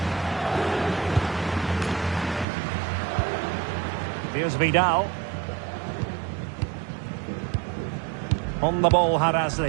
Here's Vidal. On the ball,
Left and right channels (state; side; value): drops out; left; at 2.5 s